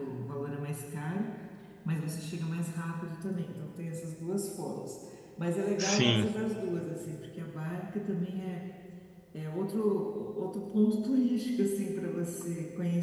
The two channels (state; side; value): identical; both; correlation 1.00